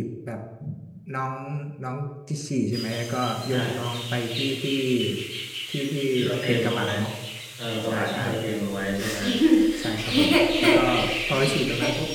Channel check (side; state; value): both; identical; correlation 1.00